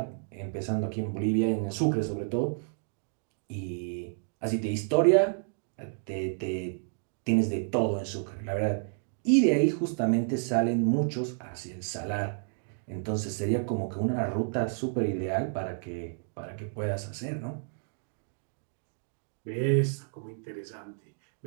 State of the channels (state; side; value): silent; left; digital silence